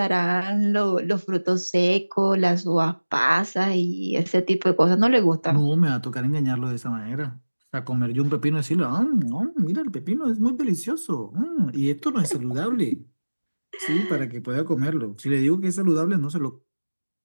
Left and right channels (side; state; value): both; inverted; correlation -1.00